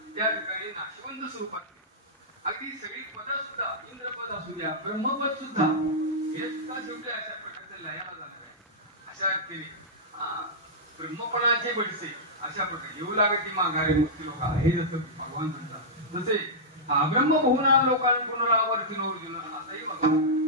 त्या ठिकाणी नाशिवंत स्वरूपात, अगदी सगळी पद सुद्धा, इंद्रपद असू द्या, ब्रह्मपद सुद्धा, हे सुद्धा शेवटी अशा प्रकारचे लयाला झालं. अशा केली ब्रह्मपणाचे बडसे अशा प्रकारे येऊ लागते माघारे मुक्ती लोक, हे जसं भगवान म्हणतात तसे ब्रह्म बहुना लोकांना पुनरावर्ती अर्जुन असंही भगवान.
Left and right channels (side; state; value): both; normal; correlation -0.11